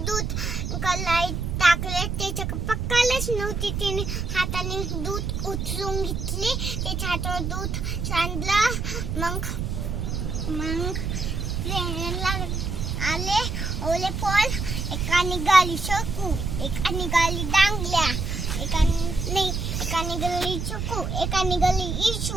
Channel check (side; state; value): right; noise; rumble, 2 dB below the sound